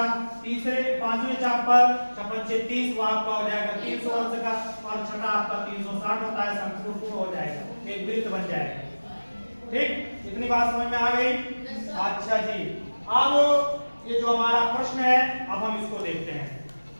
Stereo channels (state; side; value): inverted; both; correlation -1.00